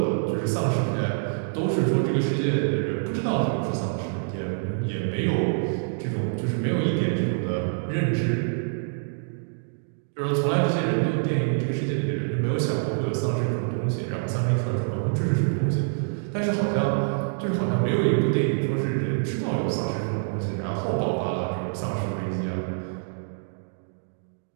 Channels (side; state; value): left; silent; digital silence